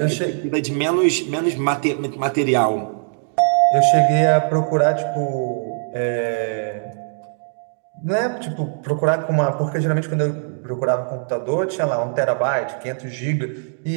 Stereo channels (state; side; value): silent; left; 65 dB below the other